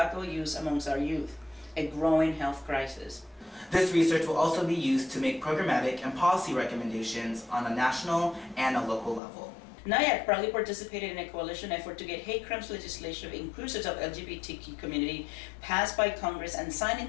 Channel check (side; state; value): right; drops out; at 9.2 s